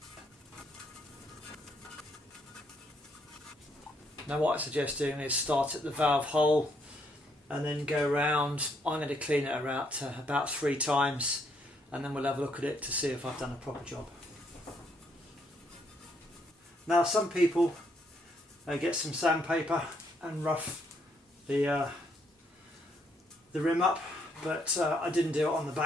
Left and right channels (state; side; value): normal; both; correlation 0.72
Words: Now what I suggest doing is start at the valve hole and then go around. I'm going to clean it around about 3 times, and then we'll have a look at it to see if I've done a proper job. Now some people get some sandpaper and rough the rim up, but I didn't do it on the